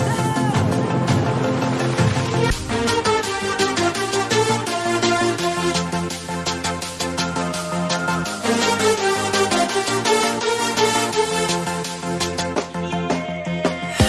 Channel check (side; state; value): both; identical; correlation 1.00